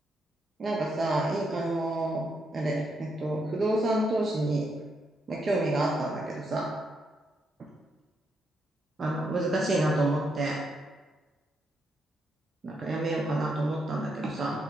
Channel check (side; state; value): both; normal; correlation 0.79